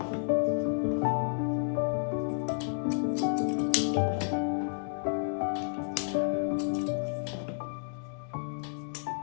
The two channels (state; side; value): silent; right; digital silence